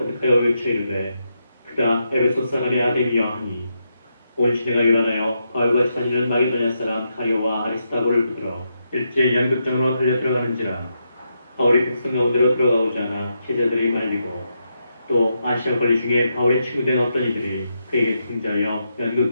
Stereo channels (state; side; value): inverted; both; correlation -0.83